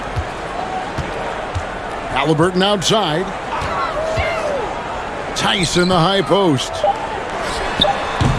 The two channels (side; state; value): both; identical; correlation 1.00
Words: Halliburton outside. Tice in the high post.